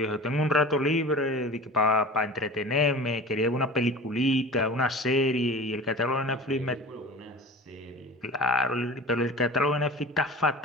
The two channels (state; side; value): normal; both; correlation 0.37